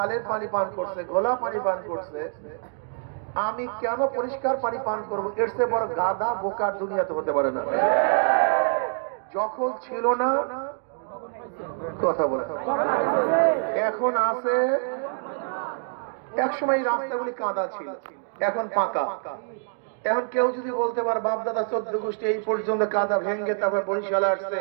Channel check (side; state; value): left; silent; digital silence